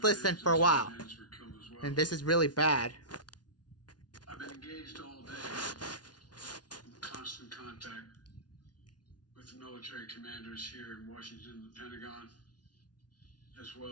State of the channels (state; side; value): late; right; 0.69 ms